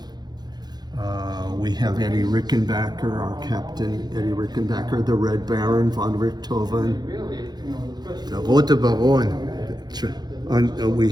we have Eddie Rickenbacker, our captain, Eddie Rickenbacker, the Red Baron, von Richthofen. The Rote Baron. We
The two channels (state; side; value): late; left; 0.20 ms